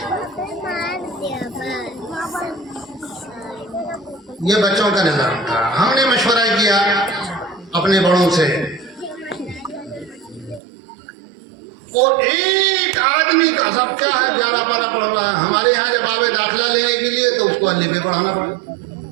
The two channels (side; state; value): left; drops out; at 10.6 s